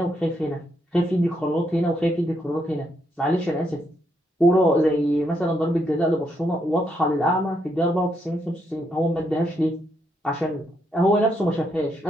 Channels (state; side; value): normal; both; correlation 0.77